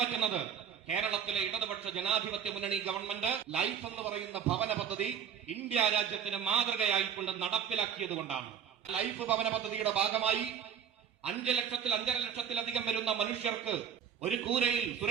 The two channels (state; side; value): quieter; left; 8.1 dB